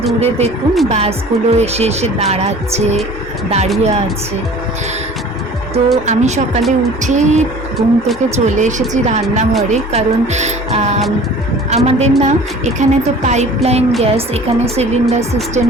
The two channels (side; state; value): both; normal; correlation 0.45